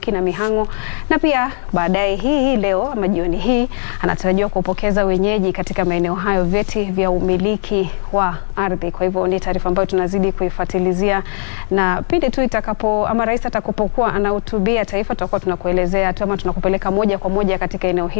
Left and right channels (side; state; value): right; silent; digital silence